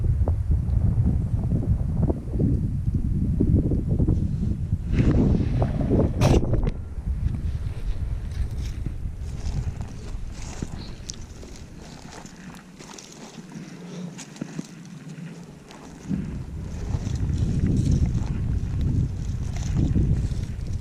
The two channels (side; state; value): both; identical; correlation 1.00